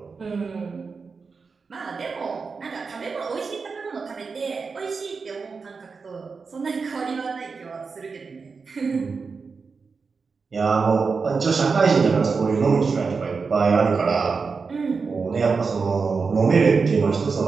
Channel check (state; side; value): quieter; left; 4.9 dB